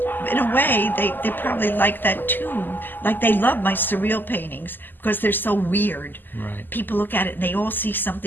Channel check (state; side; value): late; right; 0.090 ms